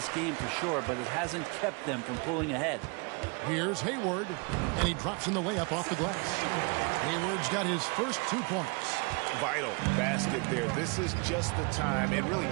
game for sure, but it hasn't kept them from pulling ahead. Here's Hayward, and he drops in the layup off the glass. Hayward's got his first 2 points. Vital basket there. This is just the time and really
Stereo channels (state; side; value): quieter; left; 31.6 dB